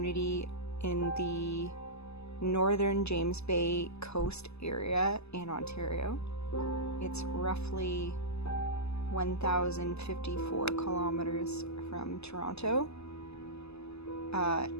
in the northern James Bay coast area in Ontario. It's roughly 1,054 kilometers from Toronto,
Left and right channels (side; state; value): right; late; 0.79 ms